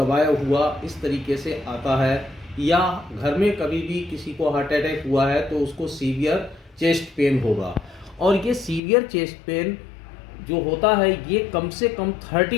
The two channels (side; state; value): right; drops out; at 8.8 s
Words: हुआ इस तरीके से आता है, या घर में कभी भी किसी को हार्ट अटैक हुआ है तो उसको सीवियर चेस्ट पेन होगा। और ये सीवियर चेस्ट पेन जो होता है ये कम से कम